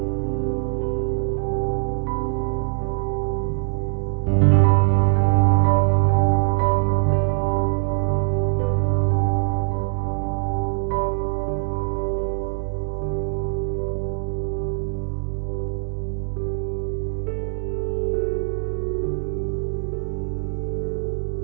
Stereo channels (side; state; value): left; silent; digital silence